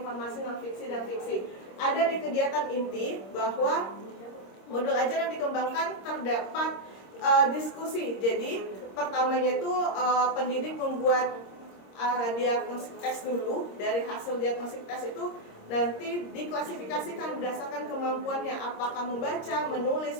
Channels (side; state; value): right; late; 26 ms